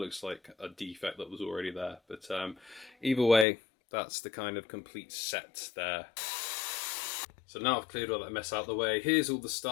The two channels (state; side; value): drops out; right; at 3.5 s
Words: like a defect that was already there. But either way, that's the kind of complete set there. So now I've cleared all that mess out of the way. Here's all the